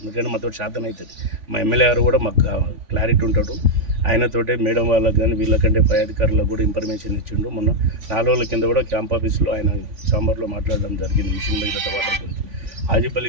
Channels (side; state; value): left; late; 3.5 ms